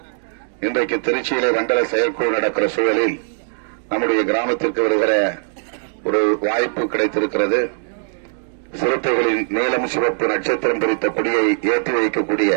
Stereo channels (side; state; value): left; silent; digital silence